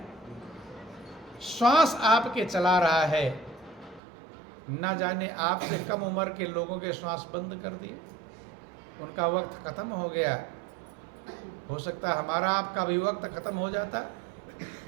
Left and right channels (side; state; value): left; drops out; at 4.0 s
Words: श्वास आपके चला रहा है। न जाने आपसे कम उम्र के लोगों के श्वास बंद कर दिए, उनका वक्त खत्म हो गया। हो सकता है हमारा आपका भी वक्त खत्म हो जाता,